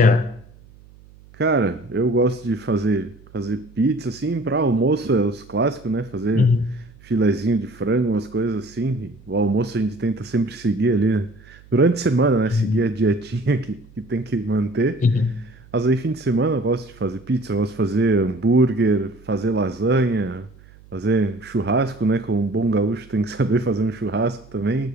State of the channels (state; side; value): noise; right; hum, 24 dB below the sound